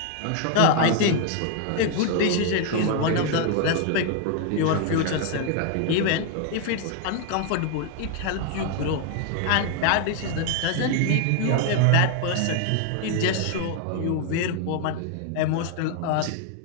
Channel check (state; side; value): different; both; correlation 0.00